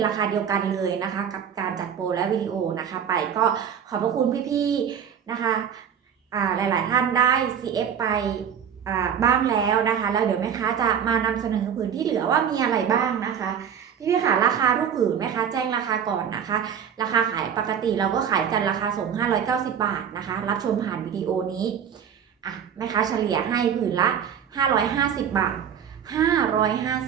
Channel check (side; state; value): left; quieter; 8.2 dB